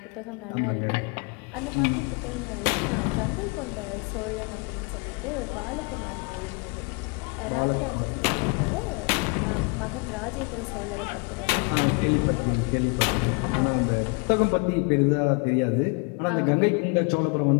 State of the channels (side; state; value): right; quieter; 32.3 dB